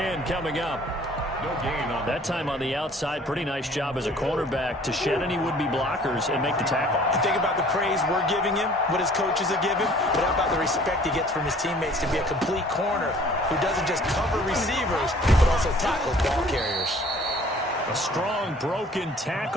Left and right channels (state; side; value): normal; both; correlation 0.53